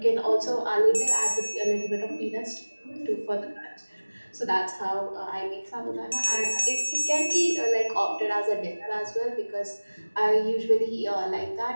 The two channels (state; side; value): inverted; both; correlation -1.00